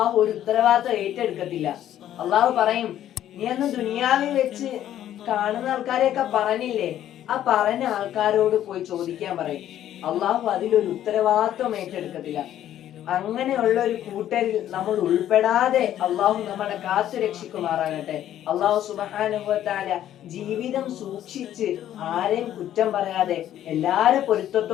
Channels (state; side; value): quieter; right; 11.7 dB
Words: ഒരു ഉത്തരവാദിത്വം ഏറ്റെടുക്കത്തില്ല. അള്ളാഹു പറയും, നീ അന്ന് ദുനിയാവിൽ വെച്ച് കാണുന്ന ആൾക്കാരെയൊക്കെ പറഞ്ഞില്ലേ, ആ പറഞ്ഞ ആൾക്കാരോട് പോയി ചോദിക്കാൻ പറയും. അള്ളാഹു അതിലൊരു ഉത്തരവാദിത്വം ഏറ്റെടുക്കത്തില്ല. അങ്ങനെയുള്ള ഒരു കൂട്ടരിൽ നമ്മൾ ഉൾപ്പെടാതെ അള്ളാഹു നമ്മളെ കാത്തു രക്ഷിക്കുമാറാകട്ടെ. അള്ളാഹു സുബ്ഹാനഹു വ തആല ജീവിതം സൂക്ഷിച്ച് ആരെയും കുറ്റം പറയാതെ എല്ലാരെ